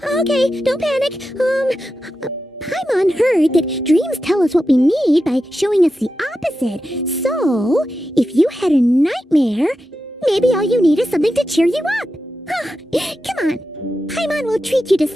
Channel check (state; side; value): normal; both; correlation 0.90